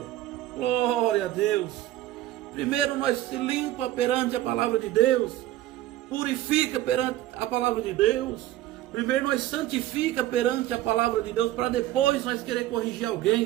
Glória a Deus. Primeiro nós se limpa perante a palavra de Deus, purifica perante a palavra de Deus. Primeiro nós santifica perante a palavra de Deus, para depois nós querer corrigir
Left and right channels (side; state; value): left; quieter; 14.7 dB